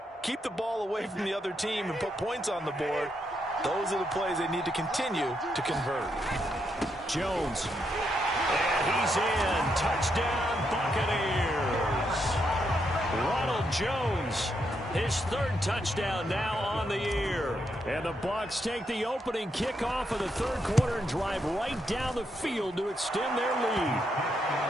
keep the ball away from the other team, and put points on the board, those are the plays they need to continue to convert. Jones. And he's in. Touchdown, Buccaneers. Ronald Jones, his 3rd touchdown now on the year. And the Bucs take the opening kickoff of the 3rd quarter and drive right down the field to extend their lead.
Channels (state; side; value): normal; both; correlation 0.80